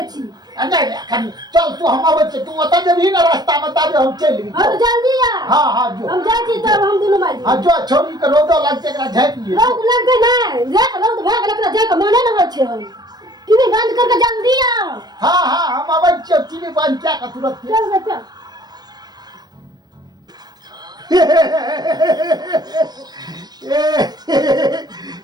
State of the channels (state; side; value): late; left; 0.19 ms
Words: छी नहीं कनी चल तू हम आबै छ तू ओता जबही ना रास्ता में तब हम चली हम जल्दी आ हां जो हम जाय छी तब हम दुनु माई हां जो छोरी के रोदो लगते एकरा झाँप लिए रोद लगते नहीं देख रोद भाग एकरा जाय के मने न होय छै हम टीवी बंद करके जल्दी आ हां हम आबै छ टीवी बंद क्या का तुरंत चल बेटा